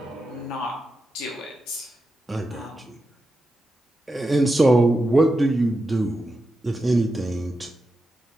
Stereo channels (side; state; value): both; normal; correlation 0.89